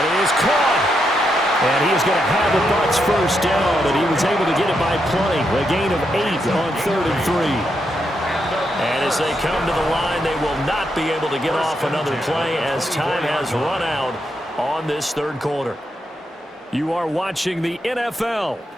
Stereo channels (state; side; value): normal; both; correlation 0.81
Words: is caught. And he is going to have a Bucs 1st down, and he was able to get it by plenty. A gain of 8 on 3rd and 3. And as they come to the line, they will not be able to get off another play as time has run out on this 3rd quarter. You are watching the NFL